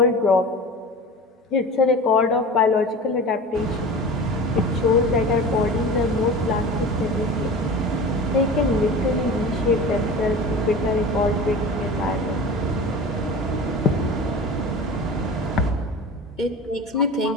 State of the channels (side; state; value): both; normal; correlation 0.34